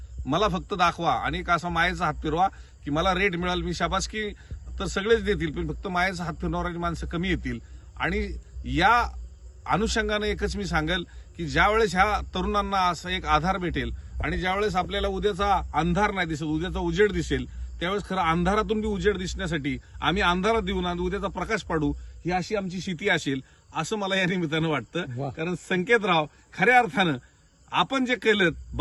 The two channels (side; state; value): both; identical; correlation 1.00